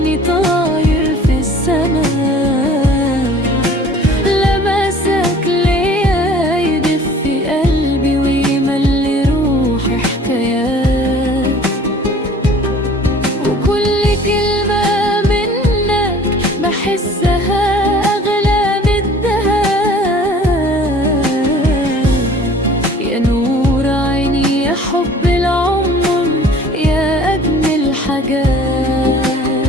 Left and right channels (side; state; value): both; normal; correlation 0.49